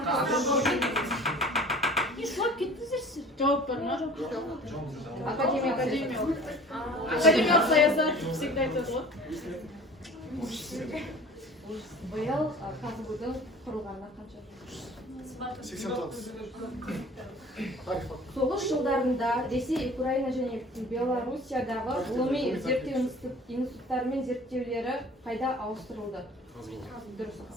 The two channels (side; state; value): both; normal; correlation 0.45